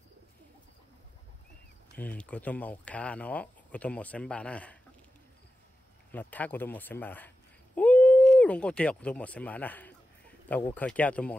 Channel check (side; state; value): both; normal; correlation 0.92